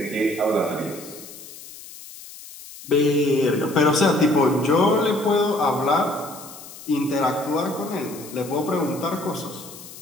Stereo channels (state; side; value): noise; left; hiss, 16 dB below the sound